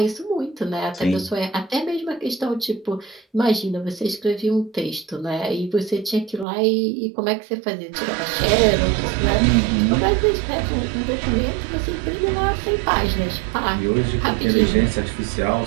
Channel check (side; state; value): left; drops out; at 6.5 s